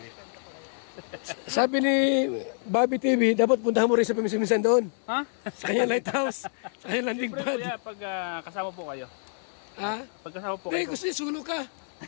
Sabi ni Bobby TV, dapat puntahan mo rin sa paminsan-minsan doon. Ha? Sa kanyang lighthouse, sa kanyang landing pad. Kaya pag kasama po kayo. Ha? Pag kasama po Hindi, kayo. gusto niya, sulo ka.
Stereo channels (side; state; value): right; silent; 60 dB below the other